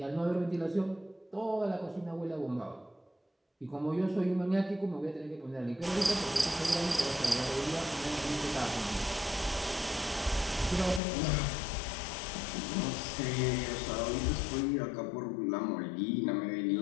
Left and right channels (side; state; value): right; drops out; at 11.0 s